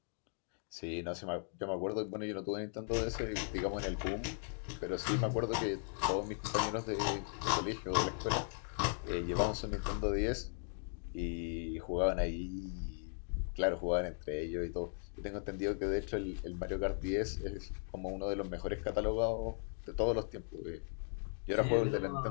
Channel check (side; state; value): right; silent; 53 dB below the other